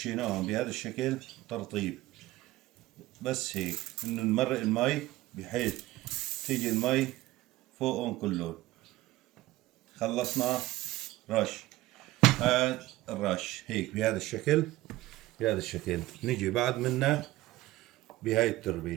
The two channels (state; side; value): quieter; left; 17.3 dB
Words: بهذا الشكل ترطيب، بس هيك انه نمرق المي بحيث تيجي المي فوقهم كلهم. خلصنا رش، هاد الرش هيك بهذا الشكل. بهذا الشكل نجي بعد منه بهاي